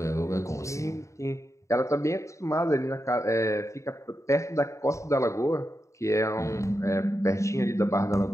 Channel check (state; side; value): late; right; 0.15 ms